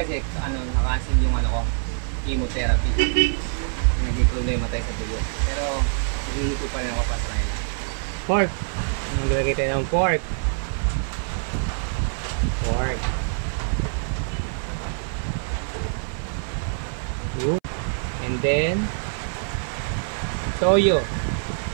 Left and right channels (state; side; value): silent; left; 61 dB below the other